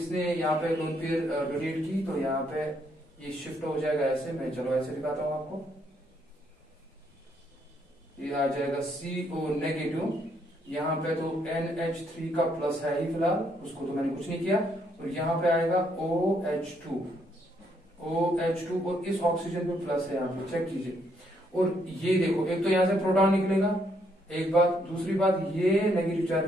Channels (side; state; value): both; normal; correlation 0.72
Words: यहाँ पे लोन पेयर डोनेट की तो यहाँ पे ये शिफ्ट हो जाएगा ऐसे, मैं चलो ऐसे दिखाता हूँ आपको। ये आ जाएगा CO नेगेटिव, यहाँ पे तो NH3 का प्लस है ही फिलहाल, उसको तो मैंने कुछ नहीं किया, और यहाँ पे आएगा OH2 और इस ऑक्सीजन पे प्लस है यहाँ पे, चेक कीजिए। और ये देखो, एक तो यहाँ से प्रोटॉन निकलेगा, एक बात, दूसरी बात ये नेगेटिव